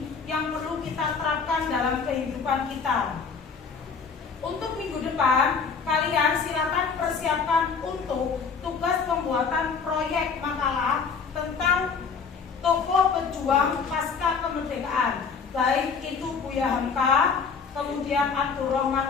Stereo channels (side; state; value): right; quieter; 5.6 dB